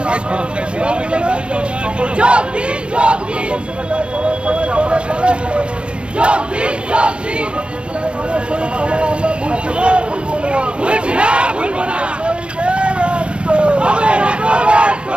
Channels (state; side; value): late; left; 0.056 ms